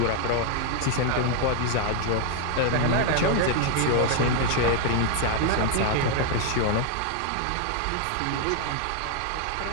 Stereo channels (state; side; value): different; both; correlation 0.00